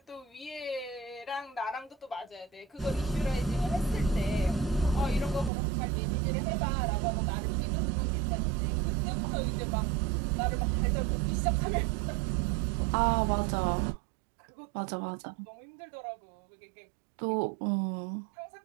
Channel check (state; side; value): drops out; left; at 5.5 s